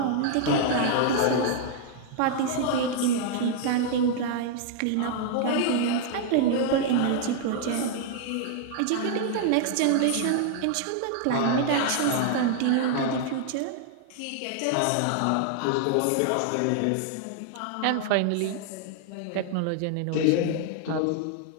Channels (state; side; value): different; both; correlation 0.00